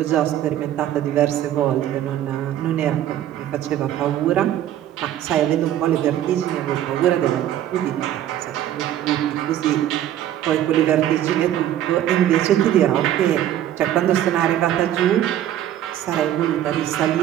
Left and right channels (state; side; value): quieter; left; 11.8 dB